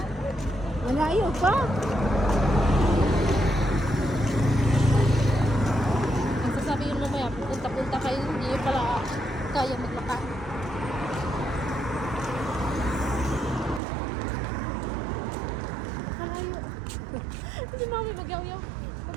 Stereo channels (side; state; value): left; drops out; at 13.8 s